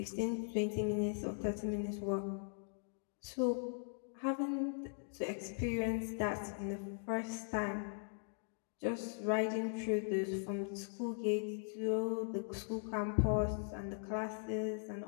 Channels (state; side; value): silent; right; digital silence